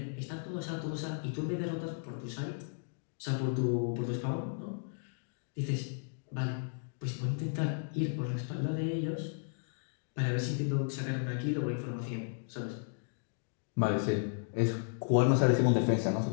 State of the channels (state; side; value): silent; right; digital silence